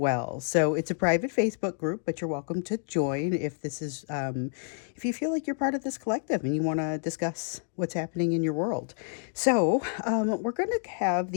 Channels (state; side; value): silent; right; 59 dB below the other